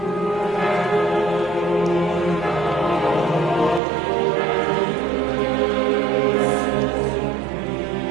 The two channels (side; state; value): left; drops out; at 3.8 s